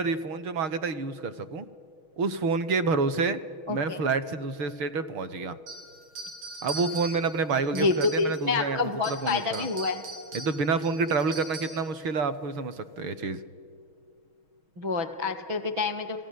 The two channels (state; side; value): late; left; 6.3 ms